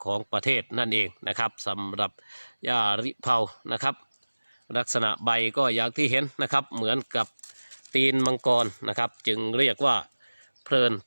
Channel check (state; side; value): inverted; both; correlation -1.00